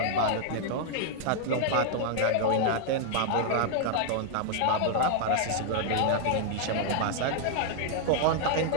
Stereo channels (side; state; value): both; different; correlation 0.00